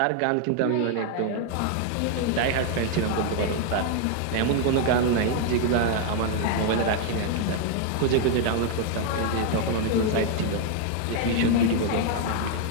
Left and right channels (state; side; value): different; both; correlation 0.00